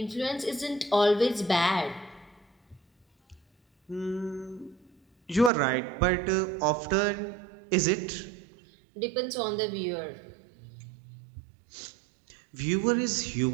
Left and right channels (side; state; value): left; drops out; at 5.5 s